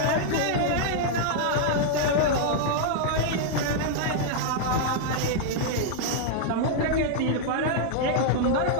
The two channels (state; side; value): different; both; correlation -0.01